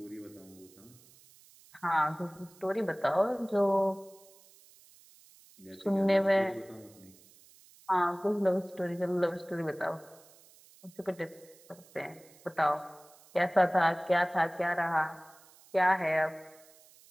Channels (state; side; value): noise; right; hiss, 26 dB below the sound